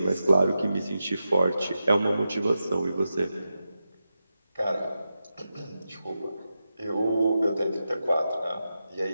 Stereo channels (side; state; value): both; inverted; correlation -0.90